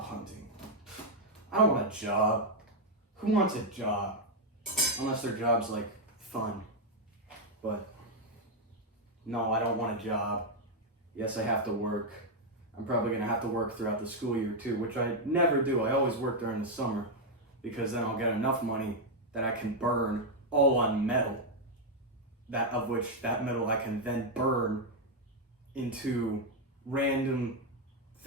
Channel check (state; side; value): normal; both; correlation 0.00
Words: hunting. I don't want a job. Who wants a job? Unless their job's like fun. But no, I don't want a job. Yes, I have to work. I'm probably gonna have to work throughout the school year too, which I never do. I always work during the summer because then I'll get enough money that I can burn all on metal. That metal I can then burn into random